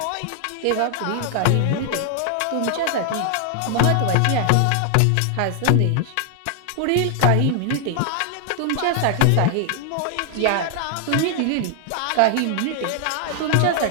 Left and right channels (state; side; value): different; both; correlation 0.00